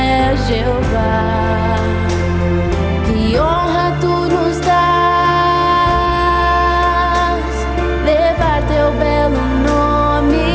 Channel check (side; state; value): both; identical; correlation 1.00